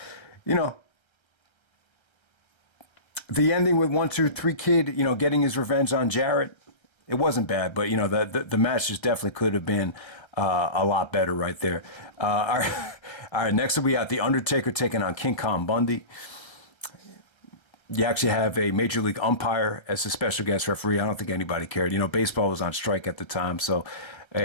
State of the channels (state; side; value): late; right; 1.3 ms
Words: the ending with 1, 2, 3 Kid, getting his revenge on Jarrett, it wasn't bad. But the match just definitely could have been a lot better right there. All right, next up we got the Undertaker taking on King Kong Bundy. You actually have a Major League umpire as a special guest referee. I don't think anybody cared. Baseball was on strike at the time, so